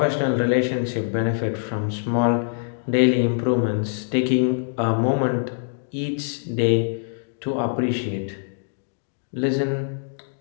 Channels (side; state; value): right; silent; digital silence